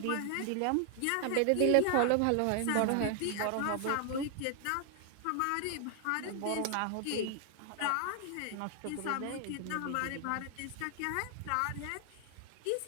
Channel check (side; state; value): both; different; correlation 0.00